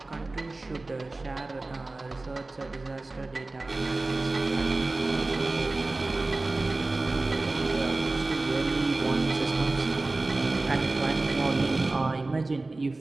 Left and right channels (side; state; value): left; quieter; 3.1 dB